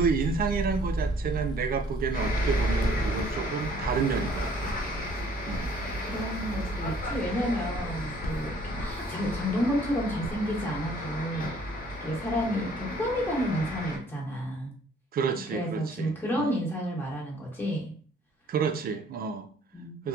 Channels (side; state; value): both; normal; correlation 0.58